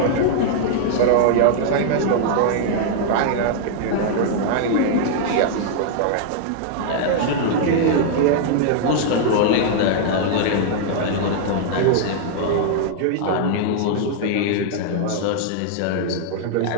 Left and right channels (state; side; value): different; both; correlation -0.01